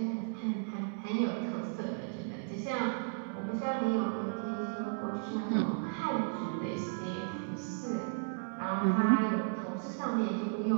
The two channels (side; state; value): left; silent; digital silence